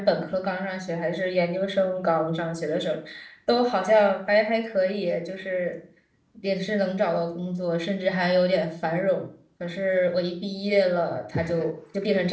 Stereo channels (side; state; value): both; identical; correlation 1.00